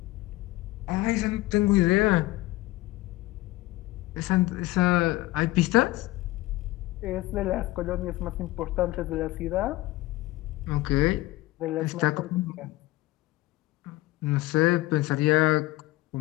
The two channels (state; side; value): quieter; right; 18.5 dB